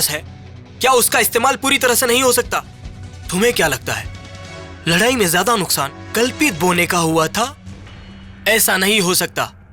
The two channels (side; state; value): both; identical; correlation 1.00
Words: है, क्या उसका इस्तेमाल पूरी तरह से नहीं हो सकता? तुम्हें क्या लगता है, लड़ाई में ज्यादा नुकसान कल्पित बोने का हुआ था? ऐसा नहीं हो सकता।